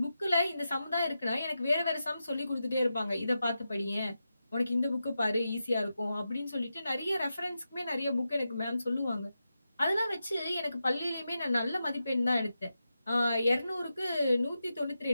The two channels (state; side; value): inverted; both; correlation -0.89